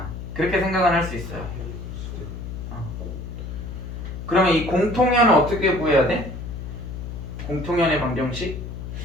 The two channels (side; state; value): left; noise; hum, 8 dB below the sound